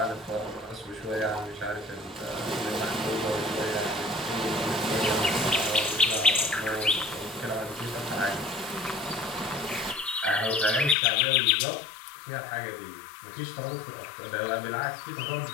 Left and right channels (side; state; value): right; drops out; at 11.0 s